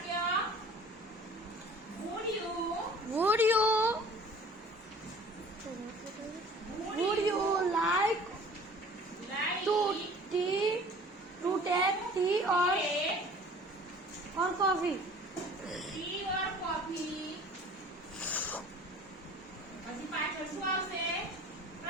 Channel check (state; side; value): normal; both; correlation 0.47